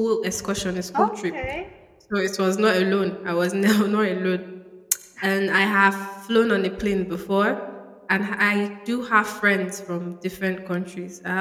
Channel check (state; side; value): identical; both; correlation 1.00